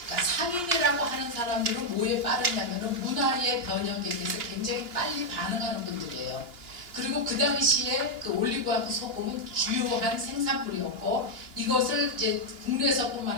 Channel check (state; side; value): late; left; 2.9 ms